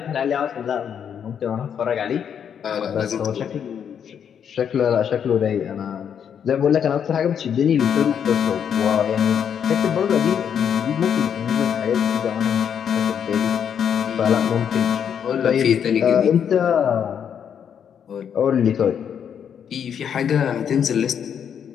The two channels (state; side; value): quieter; right; 8.2 dB